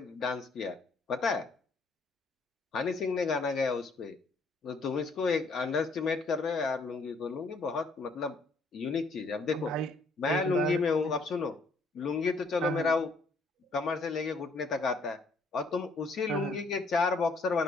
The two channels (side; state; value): right; quieter; 3.5 dB